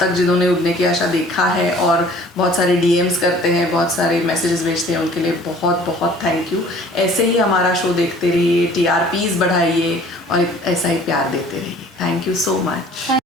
जिन्होंने उड़ने की आशा देखा है और बहुत सारे DMs करते हैं, बहुत सारे मैसेजेस भेजते हैं, उनके लिए बहुत बहुत थैंक यू। ऐसे ही हमारा शो देखते रहिए, TRPs बढ़ाइए और ऐसा ही प्यार देते रहिए। Thank you so much.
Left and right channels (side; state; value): both; normal; correlation 0.51